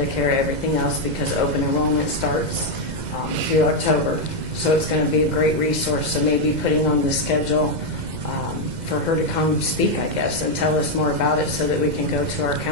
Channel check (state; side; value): late; left; 2.0 ms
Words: everything else, because open enrollment starts through October. So it's going to be a great resource. So maybe putting on the schedule for her to come speak, I guess, and tell us more about it so that we can go to our